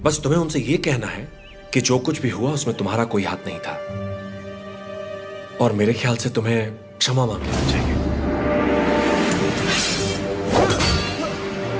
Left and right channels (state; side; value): identical; both; correlation 1.00